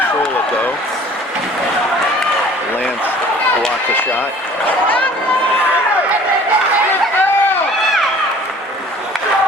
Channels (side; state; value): both; normal; correlation 0.50